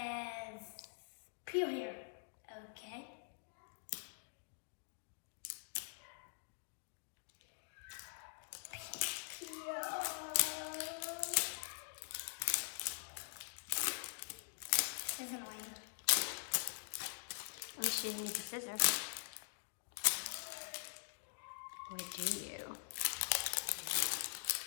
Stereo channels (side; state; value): right; silent; digital silence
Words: peel here. Okay. Peel. This is annoying. At least you need the scissors. Or do you?